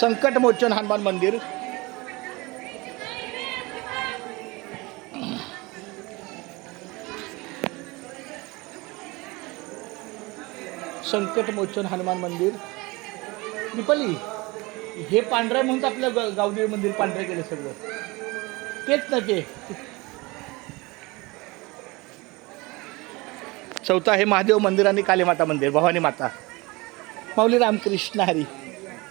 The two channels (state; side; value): quieter; left; 24.1 dB